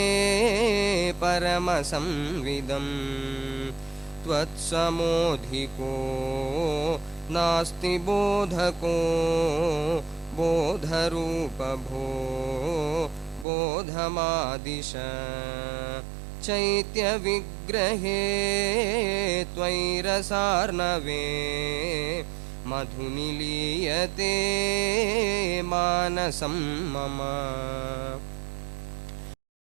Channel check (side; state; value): left; drops out; at 13.5 s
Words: परमसंविदं त्वत्समोऽधिको नास्ति बोधको बोधरूपभो बोधमादिश चैत्यविग्रहे त्वयिरसार्णवे मधुनिलीयते मानसं मम